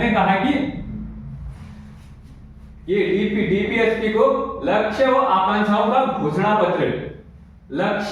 कहा कि ये डीपीएसपी को लक्ष्य व आकांक्षाओं का घोषणा पत्र,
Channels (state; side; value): identical; both; correlation 1.00